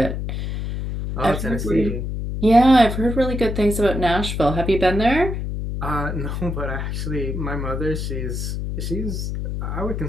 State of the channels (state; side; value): noise; left; hum, 4 dB below the sound